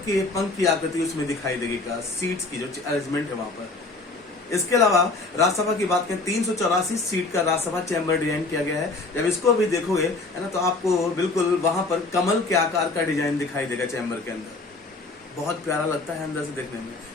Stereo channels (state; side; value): quieter; right; 3.4 dB